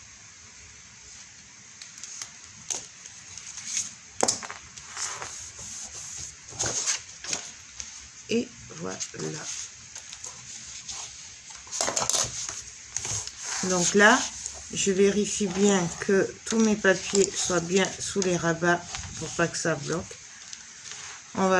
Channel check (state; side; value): identical; both; correlation 1.00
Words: Et voilà. Donc là, je vérifie bien que tous mes papiers soient bien sous les rabats pour pas que ça bloque. On